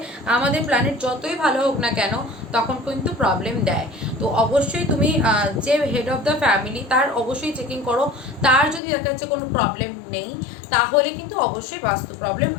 আমাদের প্ল্যানেট যতই ভালো হোক না কেন, তখন কিন্তু প্রবলেম দেয়। তো অবশ্যই তুমি যে হেড অফ দ্য ফ্যামিলি, তার অবশ্যই চেকিং করো। তার যদি দেখা যাচ্ছে কোনো প্রবলেম নেই, তাহলে কিন্তু অবশ্যই বাস্তু প্রবলেম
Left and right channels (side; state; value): right; drops out; at 8.8 s